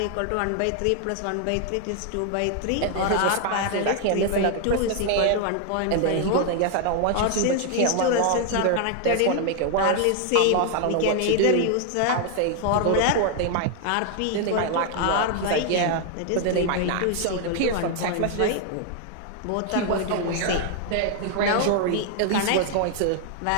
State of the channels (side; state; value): both; different; correlation 0.00